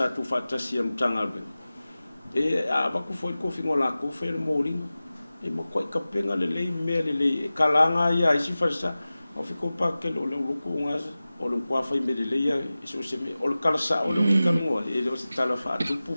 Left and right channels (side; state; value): both; inverted; correlation -0.97